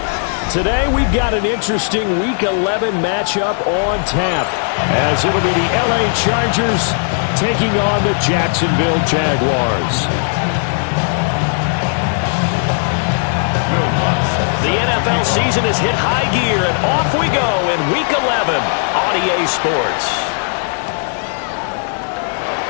Today, we've got an interesting Week 11 matchup on tap, as it'll be the LA Chargers taking on the Jacksonville Jaguars. The NFL season has hit high gear, and off we go in Week 11 on EA Sports.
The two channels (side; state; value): right; silent; digital silence